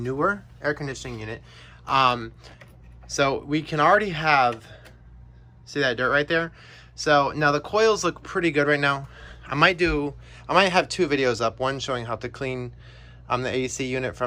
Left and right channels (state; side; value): identical; both; correlation 1.00